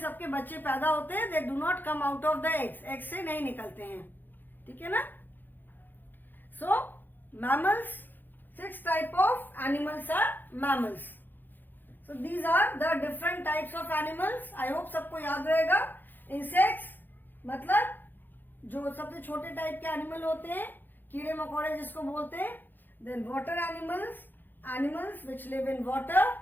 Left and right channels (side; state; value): right; late; 0.089 ms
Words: बच्चे पैदा होते हैं. They do not come out of the eggs. eggs से नहीं निकलते हैं. ठीक है ना. So mammals, 6 type of animals are mammals. So these are the different types of animals. I hope सबको याद रहेगा. Insects मतलब जो सबसे छोटे टाइप के एनिमल होते हैं, कीड़े मकोड़े जिसको बोलते हैं. Then water animals, animals which live in water.